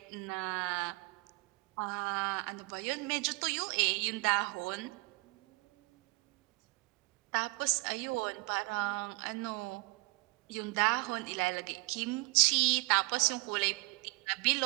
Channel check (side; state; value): left; quieter; 26.2 dB